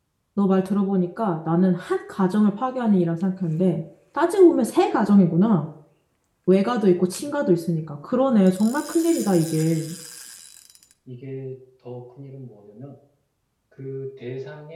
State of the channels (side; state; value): both; identical; correlation 1.00